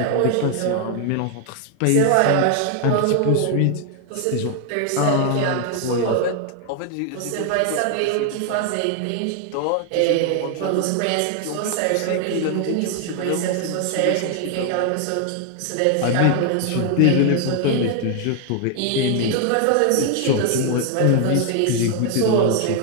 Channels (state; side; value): different; both; correlation 0.00